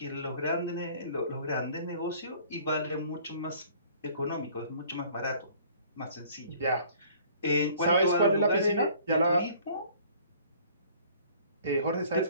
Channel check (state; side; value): inverted; both; correlation -0.54